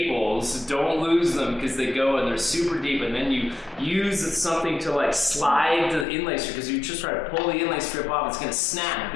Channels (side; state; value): right; drops out; at 6.1 s